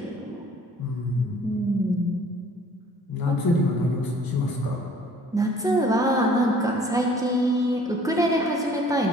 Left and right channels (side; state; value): both; normal; correlation 0.54